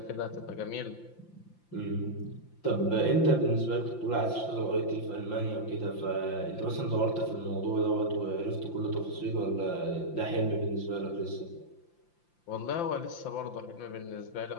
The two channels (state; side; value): late; right; 5.8 ms